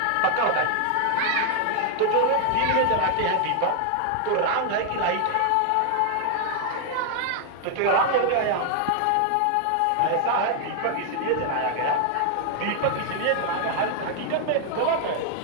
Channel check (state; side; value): different; both; correlation 0.00